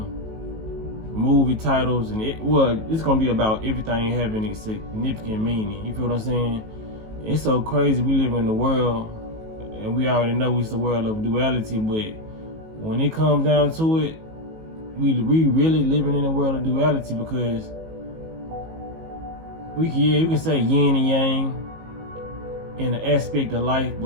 movie titles, and it's gonna be about everything having a significant meaning. You feel what I'm saying? It's so crazy. We live in the world, and we already know it's the world of duality, but when it comes down to it, we really living in a world of duality, because you can say yin and yang in an aspect of life,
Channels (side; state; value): left; late; 19 ms